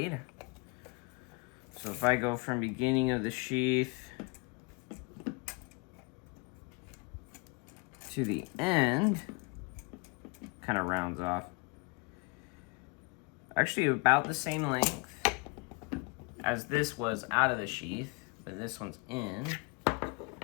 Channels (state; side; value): quieter; right; 29.5 dB